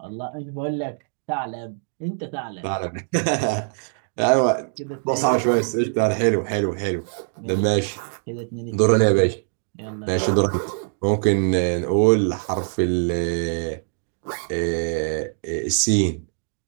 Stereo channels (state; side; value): silent; left; digital silence